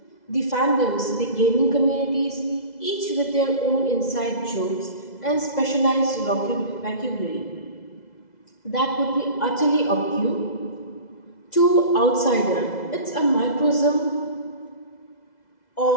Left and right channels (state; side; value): late; right; 2.0 ms